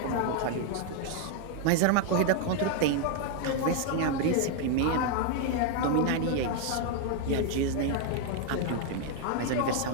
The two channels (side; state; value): both; different; correlation 0.00